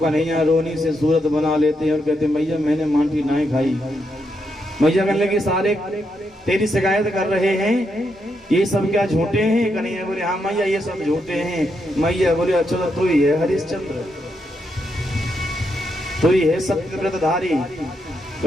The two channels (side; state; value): both; normal; correlation 0.81